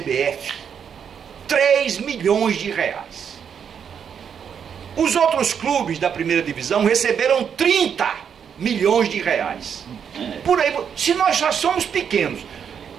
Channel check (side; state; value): left; quieter; 7.6 dB